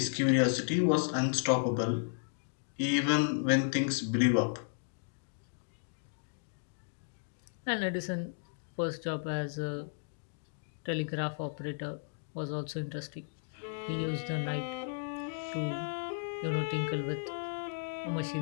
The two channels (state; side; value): silent; right; digital silence